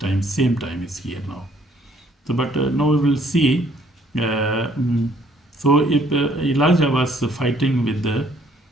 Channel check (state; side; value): normal; both; correlation 0.63